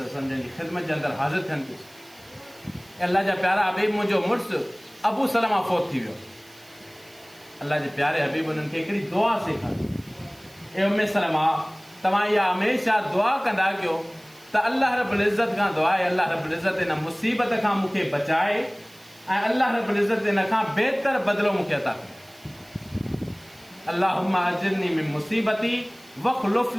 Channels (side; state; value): right; noise; hiss, 25 dB below the sound